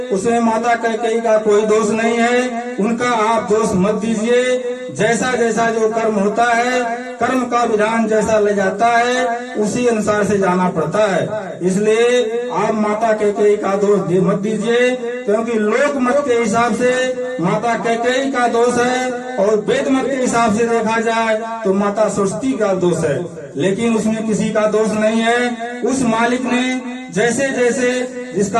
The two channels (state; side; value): identical; both; correlation 1.00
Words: उसमें माता कैकेयी का कोई दोष नहीं है, उनका आप दोष मत दीजिए। जैसा जैसा जो कर्म होता है, कर्म का विधान जैसा ले जाता है उसी अनुसार से जाना पड़ता है। इसलिए आप माता कैकेयी का दोष मत दीजिए, क्योंकि लोक मत के हिसाब से माता कैकेयी का दोष है, और वेद मत के हिसाब से देखा जाए तो माता सरस्वती का दोष है, लेकिन उसमें किसी का दोष नहीं है। उस मालिक ने जैसे जैसे